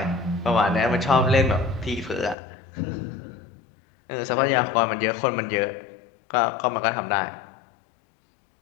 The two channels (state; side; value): drops out; right; at 2.4 s